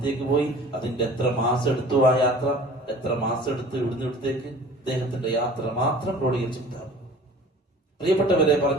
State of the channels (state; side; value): normal; both; correlation 0.45